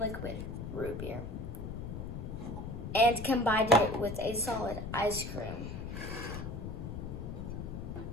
root beer and combine it with a solid ice cream.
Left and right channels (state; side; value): noise; left; rumble, 6 dB below the sound